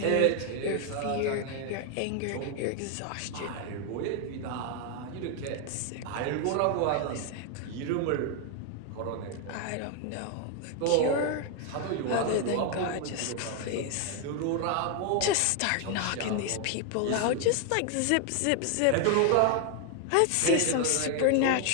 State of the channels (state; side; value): different; both; correlation 0.01